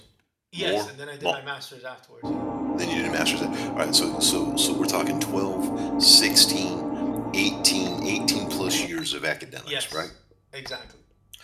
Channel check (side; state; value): both; identical; correlation 1.00